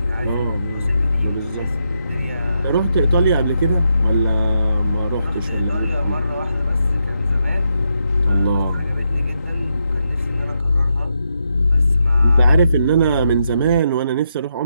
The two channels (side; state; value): both; inverted; correlation -0.81